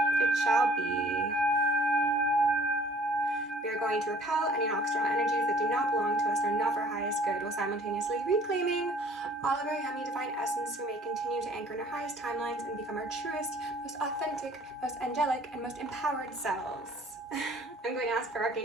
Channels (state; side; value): normal; both; correlation 0.54